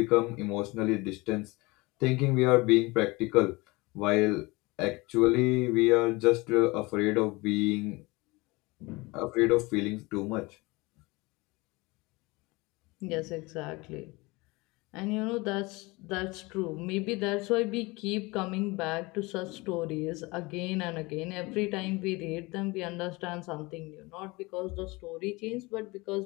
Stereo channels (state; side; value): quieter; right; 23.9 dB